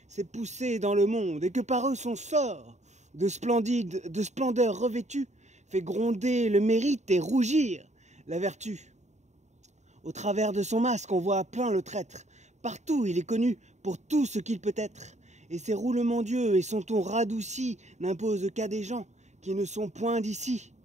s'est poussé dans le monde et que par eux son sort, de splendeur revêtu, fait gronder le mérite et rougir la vertu. Au travers de son masque, on voit plein le traître. Partout, il est connu pour tout ce qu'il peut être. Et ses roulements d'yeux et son ton radouci n'imposent qu'à des gens qui ne sont point d'ici.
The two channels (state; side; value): late; left; 0.34 ms